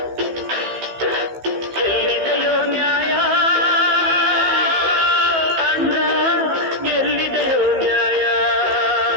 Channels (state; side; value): late; left; 15 ms